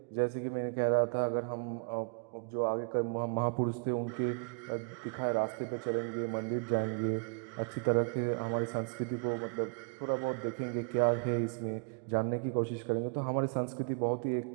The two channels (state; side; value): quieter; left; 37.1 dB